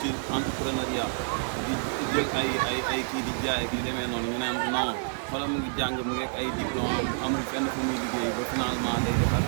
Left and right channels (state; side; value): silent; left; digital silence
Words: ci entrepreneuriat di jël ay kii di jaay ak di demee noonu ñu naan non xoolal mu ngi jàng mu ngi ay diplôme amul fenn fu muy liggéey ba finalement day defar